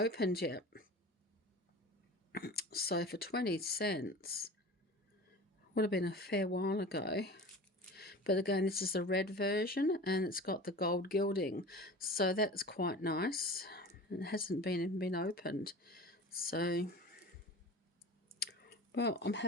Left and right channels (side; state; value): both; normal; correlation 0.37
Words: yet. So for 20 cents, would have been a fair while ago. But again, this is the red version, and it's got the gold gilding, so that's quite nice. It hasn't even been opened, so well, I'm